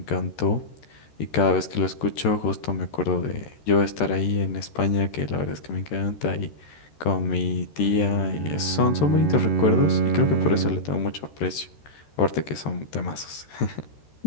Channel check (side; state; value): right; late; 13 ms